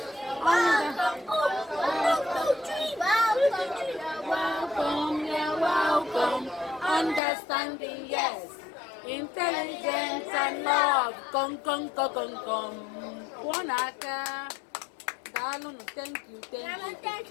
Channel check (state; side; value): drops out; right; at 7.2 s